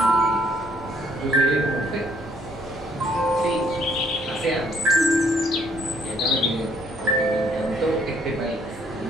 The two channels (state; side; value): normal; both; correlation 0.65